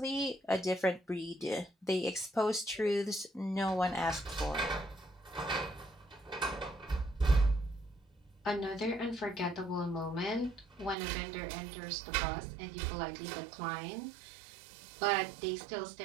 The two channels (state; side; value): drops out; left; at 11.0 s